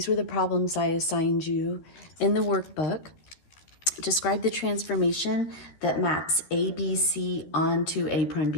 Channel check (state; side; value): late; right; 12 ms